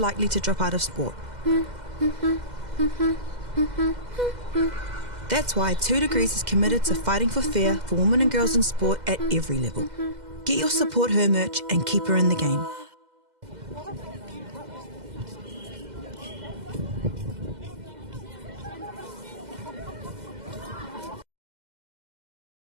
to drop out of sport. That's why 2 Degrees is committed to fighting for fair for women and girls in sport at every level. Get your Support Her merch and keep her in the game.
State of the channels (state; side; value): late; left; 2.0 ms